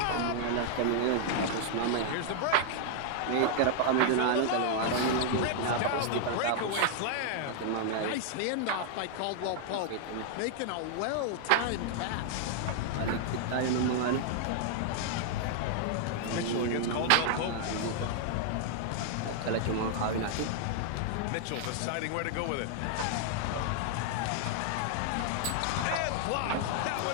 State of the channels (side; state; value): both; different; correlation 0.00